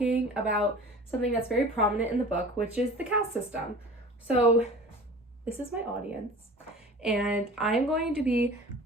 about something that's very prominent in the book, which is the caste system. So this is my audience, and I'm going to be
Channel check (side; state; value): both; normal; correlation 0.41